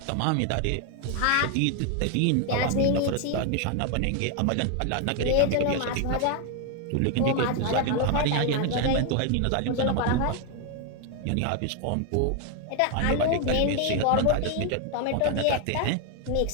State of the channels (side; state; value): both; different; correlation 0.01